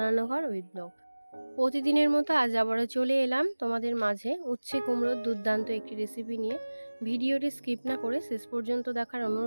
রান্নাঘর উইথ ব্লগ। প্রতিদিনের মতো আজ আবারও চলে এলাম তোমাদের মাঝে উচ্ছে কুমড়োর দুর্দান্ত একটি রেসিপি নিয়ে। ভিডিওটি স্কিপ না করে শেষ পর্যন্ত দেখার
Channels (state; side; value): inverted; both; correlation -1.00